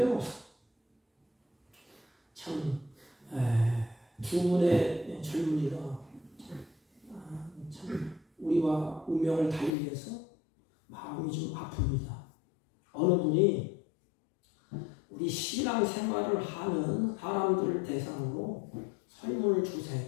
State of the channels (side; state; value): right; drops out; at 9.8 s